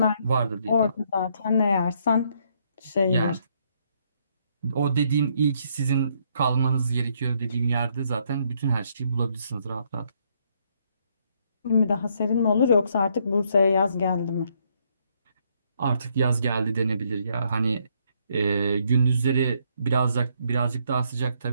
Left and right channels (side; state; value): both; inverted; correlation -0.71